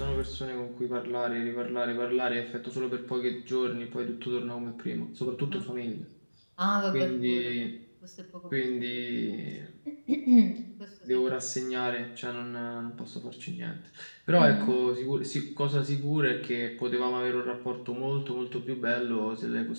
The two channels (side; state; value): both; inverted; correlation -1.00